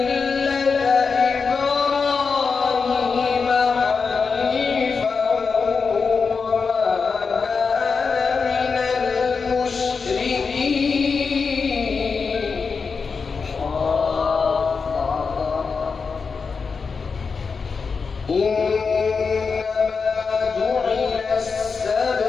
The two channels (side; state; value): right; quieter; 5.1 dB